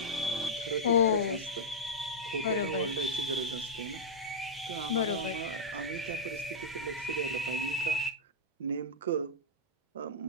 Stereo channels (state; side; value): normal; both; correlation -0.07